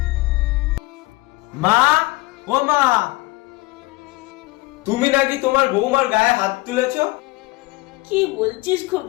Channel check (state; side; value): quieter; right; 21.1 dB